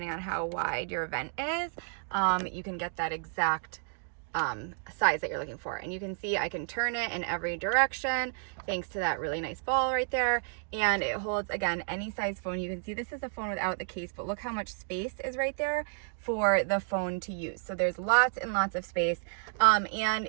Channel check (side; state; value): left; silent; 57 dB below the other